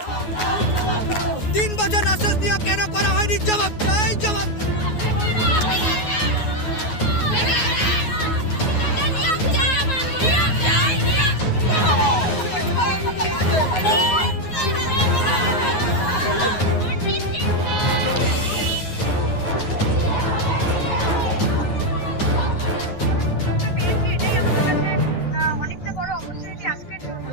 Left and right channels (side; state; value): right; late; 9.5 ms